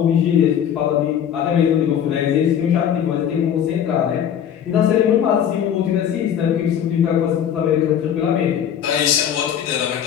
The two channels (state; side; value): quieter; right; 9.3 dB